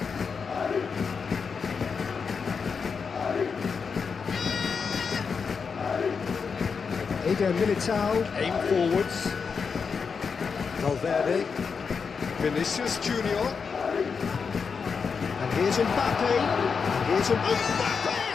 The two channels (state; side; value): quieter; right; 5.7 dB